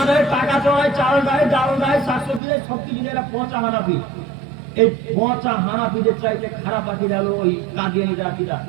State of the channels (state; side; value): drops out; left; at 2.4 s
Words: টাকা চড়ায়, চাল দেয়, ডাল দেয়, শাকসবজি দেয়, সবকিছু দেয়, পচা হানাফি। এই পচা হানাফিদের চাইতে খারাপ আকীদা হলো ওই কাদিয়ানী যারা আকীদা।